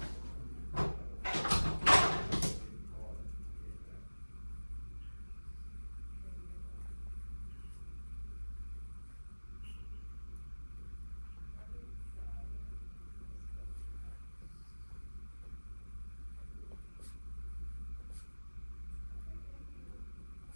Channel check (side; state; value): both; inverted; correlation -1.00